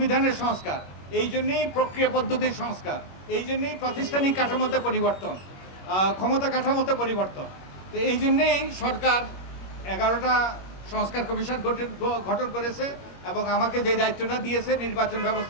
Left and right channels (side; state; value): right; late; 21 ms